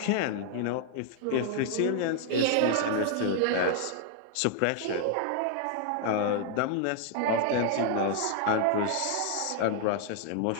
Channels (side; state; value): both; different; correlation 0.00